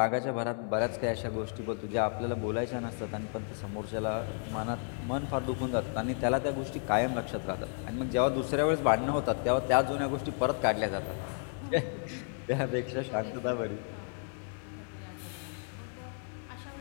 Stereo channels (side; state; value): right; silent; 56 dB below the other